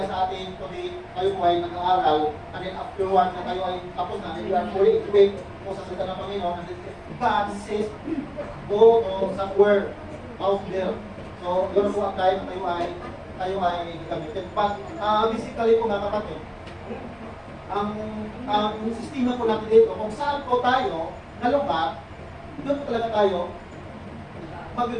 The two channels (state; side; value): identical; both; correlation 1.00